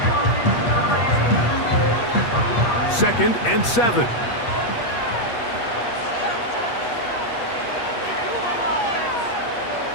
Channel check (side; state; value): right; late; 8.4 ms